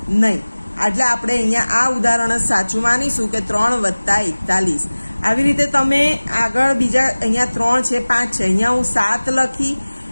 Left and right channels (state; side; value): inverted; both; correlation -1.00